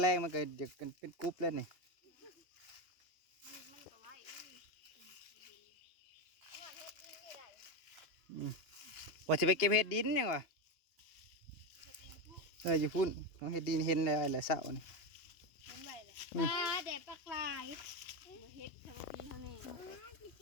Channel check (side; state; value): right; late; 2.8 ms